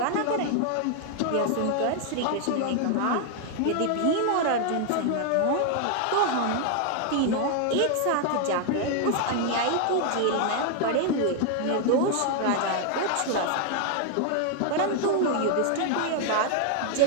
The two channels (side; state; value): both; different; correlation 0.00